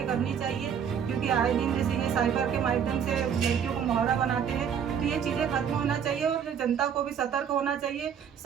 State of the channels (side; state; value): left; quieter; 7.9 dB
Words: करनी चाहिए, क्योंकि आए दिन जैसे ये साइबर के माध्यम से लड़कियों को मुहावरा बनाते हैं, तो ये चीज़ें खत्म होना चाहिए और जनता को भी सतर्क होना चाहिए,